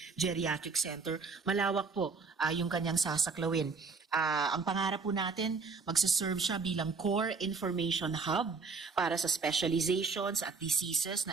Geriatric Center, malawak po yung kanyang sasaklawin. Ang pangarap po natin, magsaserve siya bilang core information hub para sa specializations at diseases na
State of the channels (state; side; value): quieter; left; 4.7 dB